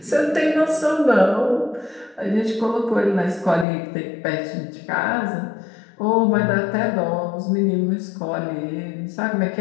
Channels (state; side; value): drops out; right; at 3.7 s